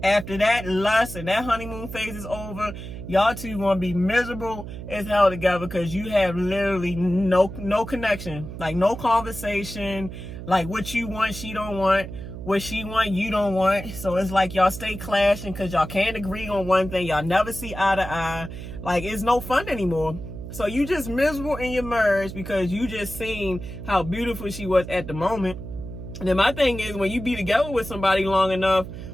after that lust and that honeymoon phase is over, y'all two gonna be miserable as hell together, because you have literally no connection, like no conversation, like what you want she don't want, what she want you don't want. So it's like y'all stay clashing because y'all can't agree on one thing. Y'all never see eye to eye. Like, it's no fun anymore. So you just miserable in your marriage because you just seen how beautiful she was at the moment. And then my thing is, when you be together with somebody long enough,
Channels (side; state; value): right; noise; hum, 10 dB below the sound